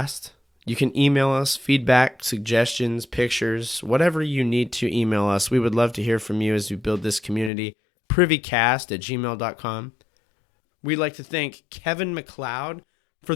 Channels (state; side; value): drops out; right; at 7.5 s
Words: You can email us feedback, suggestions, pictures, whatever you need to email us. We would love to hear from you as we build this community. Privycast@gmail.com. We'd like to thank Kevin MacLeod for